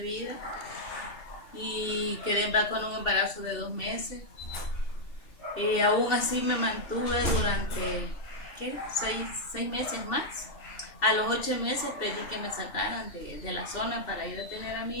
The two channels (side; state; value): right; late; 2.7 ms